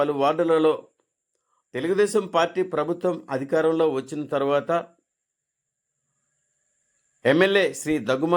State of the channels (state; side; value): identical; both; correlation 1.00